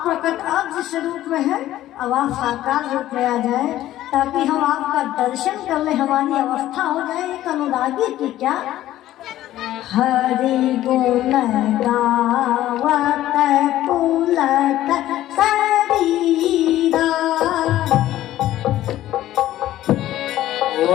प्रकट आप जिस रूप में है, अब आप साकार रूप में आ जाए ताकि हम आपका दर्शन कर ले, हमारी अवस्था हो जाए एक अनुरागी की। क्या हरि गुण गावत पुलक शरीरा,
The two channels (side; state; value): right; quieter; 13.9 dB